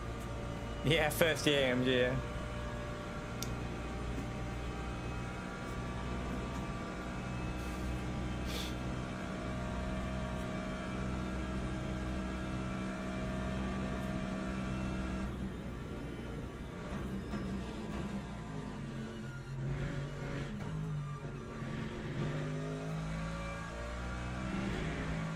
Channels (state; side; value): identical; both; correlation 1.00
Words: Yeah, first year AMG, yeah.